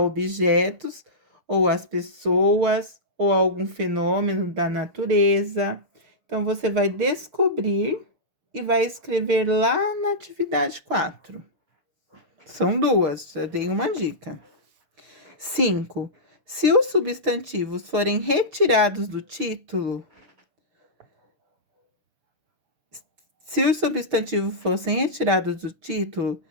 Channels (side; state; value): left; late; 6.5 ms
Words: ou às pessoas, ou a algum fenômeno da natureza. Então, você vai descobrir e vai escrever lá na atividade 4. São duas, já dei uma dica. 5. Se os substantivos forem retirados do título,